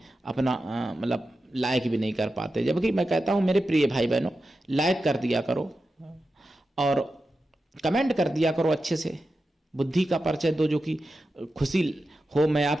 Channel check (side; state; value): both; normal; correlation 0.91